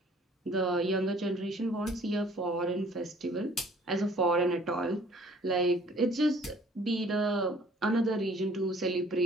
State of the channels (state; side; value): normal; both; correlation 0.55